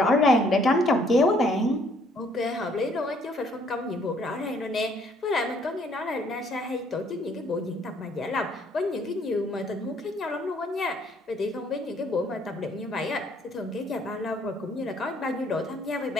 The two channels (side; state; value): both; normal; correlation 0.64